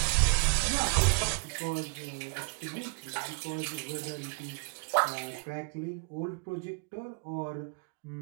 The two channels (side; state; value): left; quieter; 34.4 dB